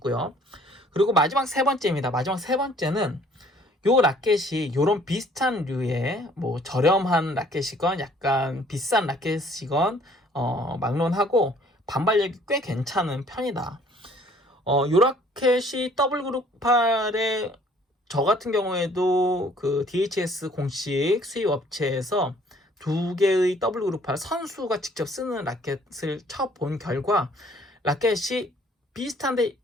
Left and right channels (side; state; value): both; normal; correlation 0.58